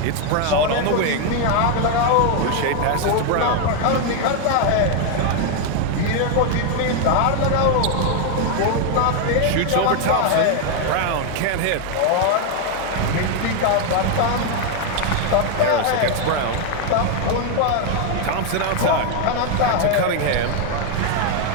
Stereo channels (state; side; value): different; both; correlation 0.01